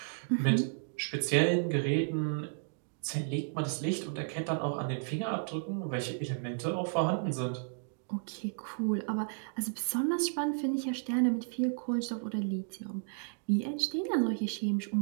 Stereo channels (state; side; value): silent; left; digital silence